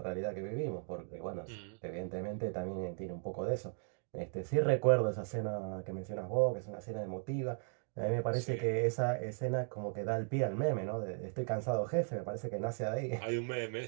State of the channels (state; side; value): silent; left; 53 dB below the other